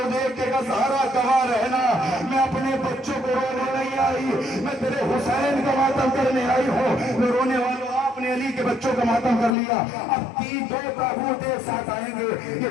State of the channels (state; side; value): drops out; right; at 9.6 s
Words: دیکھ کے کہا زہرا گواہ رہنا، میں اپنے بچوں کو رونے نہیں آئی، میں تیرے حسین کا ماتم کرنے آئی ہوں۔ میں رونے والوں آپ نے علی کے بچوں کا ماتم کر لیا، اب 2 تابوت ایک ساتھ آئیں گے۔